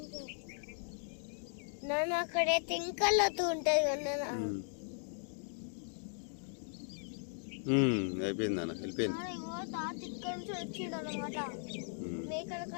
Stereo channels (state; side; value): silent; right; digital silence